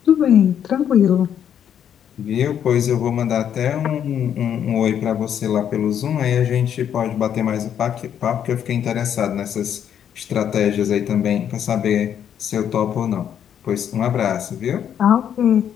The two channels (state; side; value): quieter; right; 9.2 dB